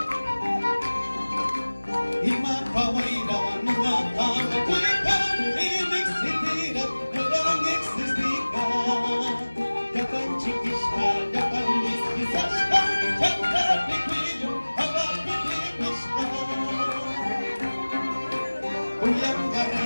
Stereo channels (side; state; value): both; inverted; correlation -1.00